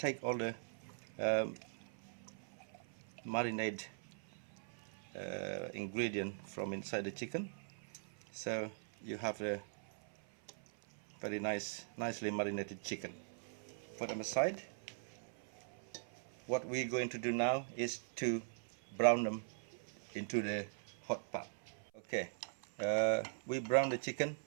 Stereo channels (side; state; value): left; silent; 50 dB below the other